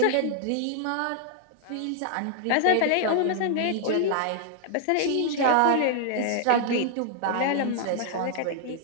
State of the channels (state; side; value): different; both; correlation -0.01